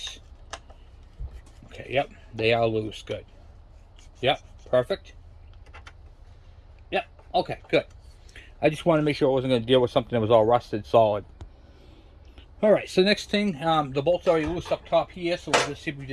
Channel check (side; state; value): both; identical; correlation 1.00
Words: Okay, yep, they are loose. Good. Yep, perfect. Yep, okay, good. I just wanted to make sure I wasn't going to deal with something that was all rusted solid. All right, so next thing, the bolt's already loose up top here, so we'll just see if we